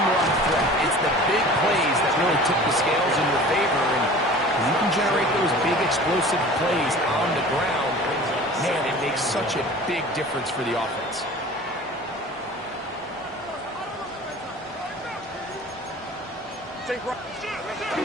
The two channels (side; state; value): both; normal; correlation 0.42